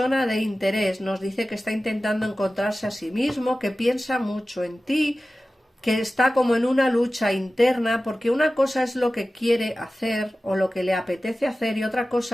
de interés. Nos dice que está intentando encontrarse a sí mismo, que piensa mucho en ti, que está como en una lucha interna, porque una cosa es lo que quiere hacer o lo que le apetece hacer y otra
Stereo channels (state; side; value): normal; both; correlation 0.96